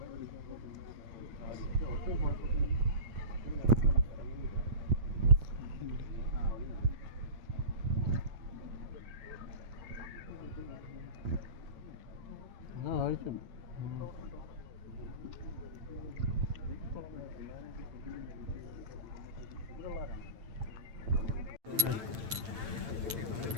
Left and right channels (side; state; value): left; late; 8.9 ms